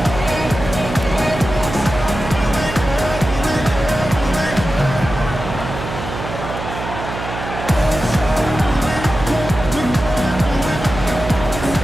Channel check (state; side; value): noise; right; hum, 8 dB below the sound